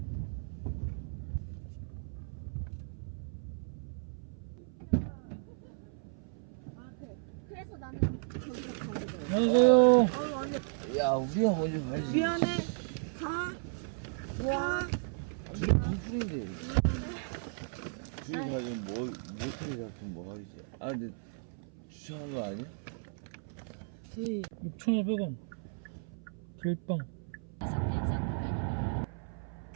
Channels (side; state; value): left; silent; 55 dB below the other